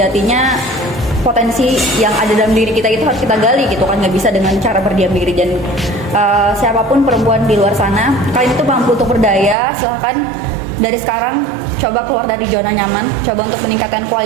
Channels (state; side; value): drops out; left; at 9.6 s